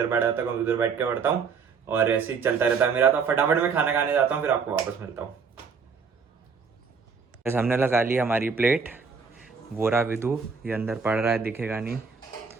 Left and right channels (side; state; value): left; quieter; 5.6 dB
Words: बैठ जाता हूँ, उधर बैठ के पढ़ता हूँ, और ऐसे ही चलता रहता है मेरा. तो फटाफट मैं खाना खाने जाता हूँ, फिर आपको वापस मिलता हूँ. हमने लगा ली हमारी प्लेट. वो रहा विदु, ये अंदर पढ़ रहा है, दिखेगा नहीं,